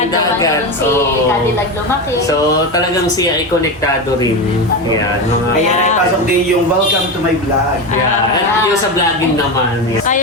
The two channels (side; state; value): both; normal; correlation 0.18